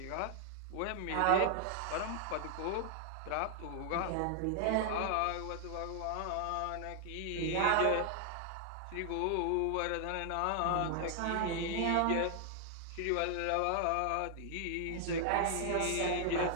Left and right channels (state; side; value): different; both; correlation 0.00